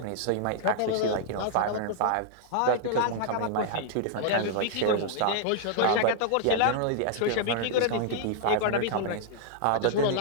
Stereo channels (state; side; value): different; both; correlation -0.01